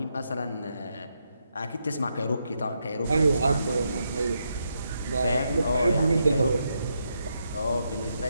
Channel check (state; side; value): inverted; both; correlation -0.82